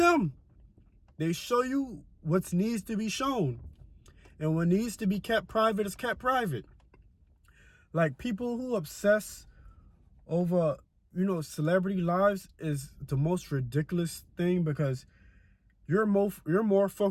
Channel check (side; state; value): both; identical; correlation 1.00